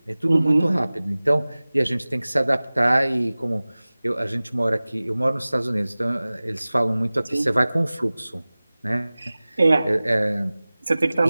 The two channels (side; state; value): both; inverted; correlation -0.98